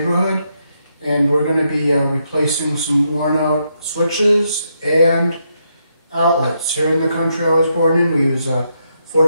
and we're going to be replacing some worn out switches and outlets. Here in the country I was born in, we use a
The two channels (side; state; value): both; inverted; correlation -0.79